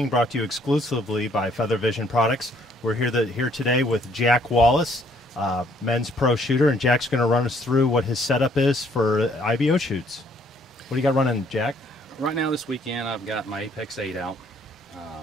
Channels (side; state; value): both; normal; correlation 0.64